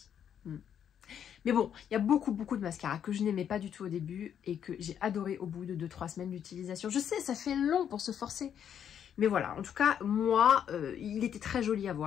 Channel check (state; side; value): quieter; right; 8.9 dB